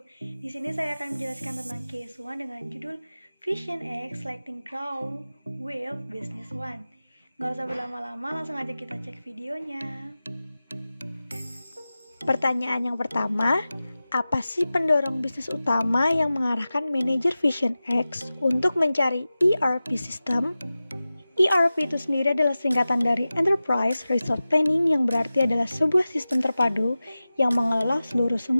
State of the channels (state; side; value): inverted; both; correlation -0.96